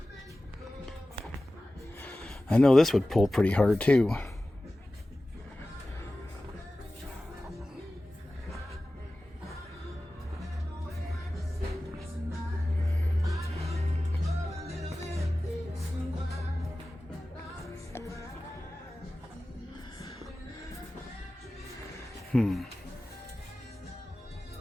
I know this would pull pretty hard too.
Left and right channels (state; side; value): normal; both; correlation 0.96